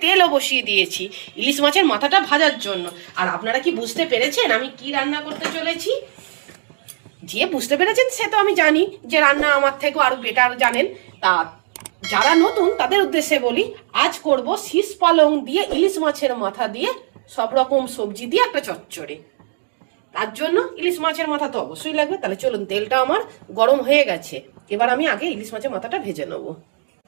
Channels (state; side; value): silent; left; digital silence